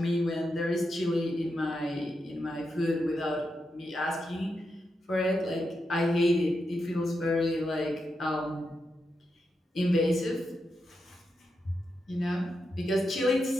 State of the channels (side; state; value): both; normal; correlation 0.86